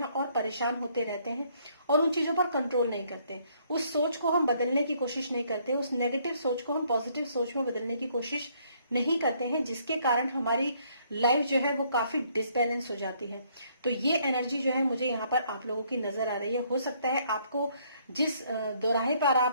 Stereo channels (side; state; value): both; inverted; correlation -0.66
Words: और परेशान होते रहते हैं और उन चीजों पर कंट्रोल नहीं करते। उस सोच को हम बदलने की कोशिश नहीं करते, उस नेगेटिव सोच को हम पॉजिटिव सोच में बदलने की कोशिश नहीं करते हैं, जिसके कारण हमारी लाइफ जो है वो काफी डिसबैलेंस हो जाती है। तो ये एनर्जी जो है मुझे यहाँ पर आप लोगों की नजर आ रही है। हो सकता है आपको जिस दोराहे पर